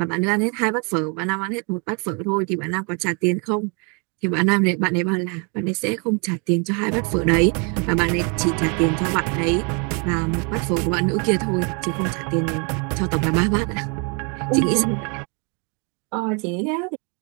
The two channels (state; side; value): quieter; left; 34.7 dB